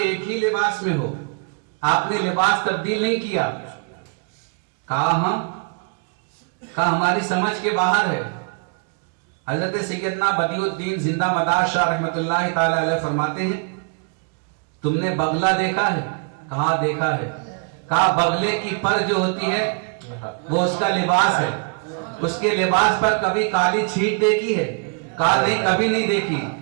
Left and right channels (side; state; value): left; quieter; 36.4 dB